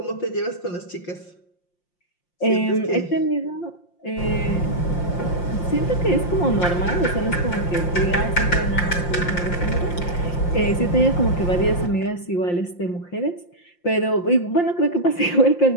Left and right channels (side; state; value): right; late; 5.7 ms